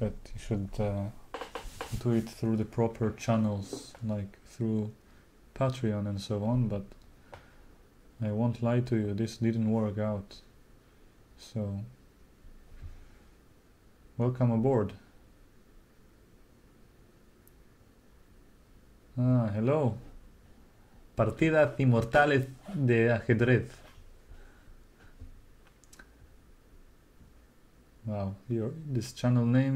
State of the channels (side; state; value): both; identical; correlation 1.00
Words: you should do it through the proper channels, like through Patreon and so on, but I won't lie to you, this didn't work out. So welcome aboard. Hello. Partidas inmortales de ajedrez. Wow, this channel